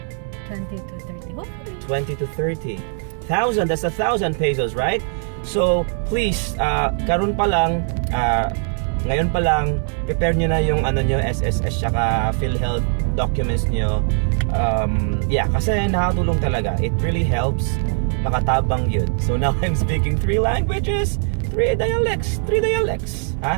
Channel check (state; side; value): silent; left; 57 dB below the other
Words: 20 to 30. What? 20 to 30,000. That's 1,000 pesos, right? So please, ngayon pa lang, prepare nyo na yung SSS saka PhilHealth documents nyo. Yeah, kasi nakatulong talaga. It really helps. Makatabang yun. So now I'm speaking 3 languages, 3 dialects.